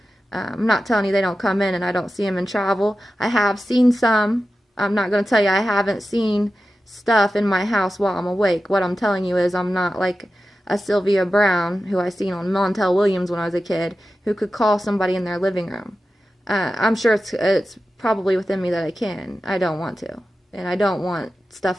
I'm not telling you they don't come in and I don't see them in travel. I have seen some. I'm not going to tell you I haven't seen stuff in my house while I'm awake. What I'm telling you is I'm not like a Sylvia Brown, who I seen on Montel Williams when I was a kid, who could call somebody in their living room. I'm sure it's probably within me that I can. I don't want to. And I don't want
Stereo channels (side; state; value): both; normal; correlation 0.93